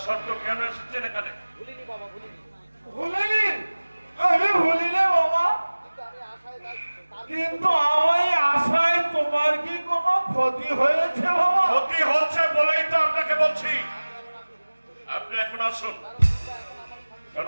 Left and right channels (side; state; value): both; inverted; correlation -1.00